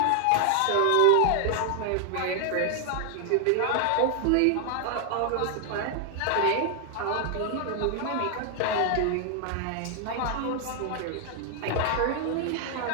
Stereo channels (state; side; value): different; both; correlation 0.00